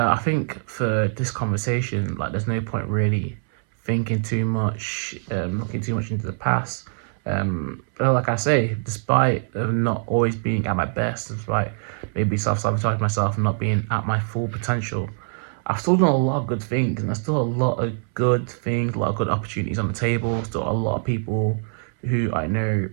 think for this conversation, like, there's no point really thinking too much, looking too much into the past. But like I say, despite not always being at my best, despite maybe self-sabotage myself and not being at my full potential, I've still done a lot of good things, and there's still a lot of good things, a lot of good opportunities on the table. Still a lot of people who I know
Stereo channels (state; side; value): silent; left; 62 dB below the other